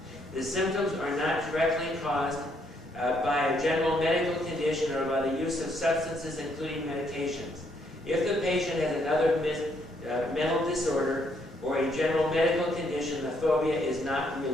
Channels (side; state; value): both; normal; correlation 0.72